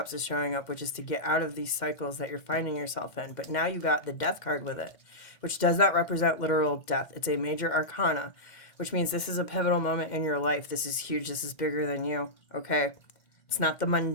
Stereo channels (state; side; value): late; right; 2.1 ms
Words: is showing up, which is to get out of these cycles that you're finding yourself in. But now you got the Death card with it, which does not represent literal death. It's a major arcana, which means this is a pivotal moment in your life. This is huge. This is bigger than you, okay? It's not the